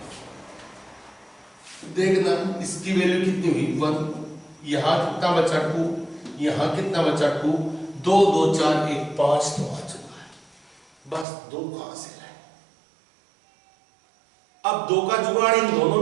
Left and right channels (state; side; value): drops out; left; at 11.2 s